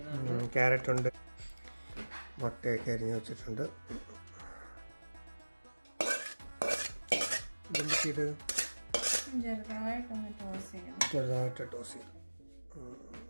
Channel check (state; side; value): inverted; both; correlation -1.00